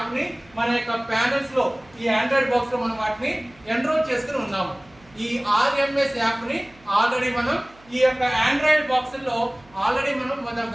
ని మన యొక్క ప్యానల్స్ లో ఈ ఆండ్రాయిడ్ బాక్స్ లో మనం వాటిని ఎన్రోల్ చేసుకుని ఉన్నాము. ఈ RMS యాప్ ని ఆల్రెడీ మనం ఈ యొక్క ఆండ్రాయిడ్ బాక్స్ లో ఆల్రెడీ మనం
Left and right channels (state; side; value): noise; right; hum, 28 dB below the sound